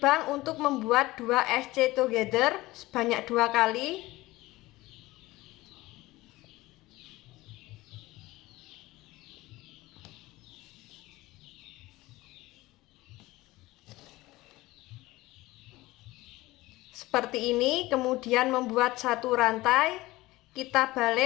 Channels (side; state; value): right; quieter; 18.9 dB